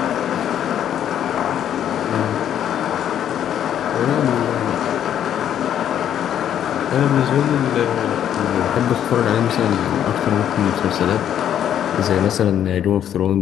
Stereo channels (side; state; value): right; quieter; 10.1 dB